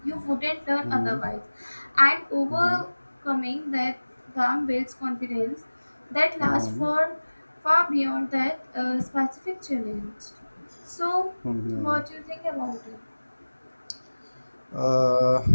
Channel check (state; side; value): inverted; both; correlation -1.00